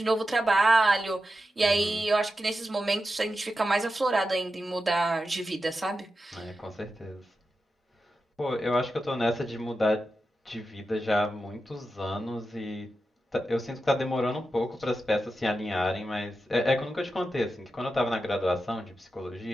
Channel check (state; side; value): normal; both; correlation 0.90